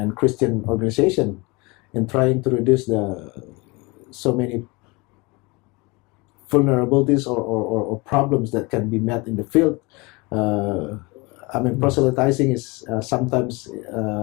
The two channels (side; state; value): right; quieter; 26.2 dB